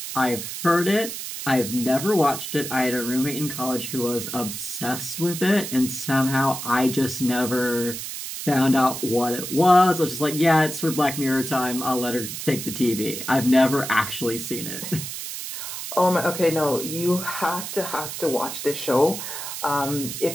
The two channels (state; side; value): noise; right; hiss, 7 dB below the sound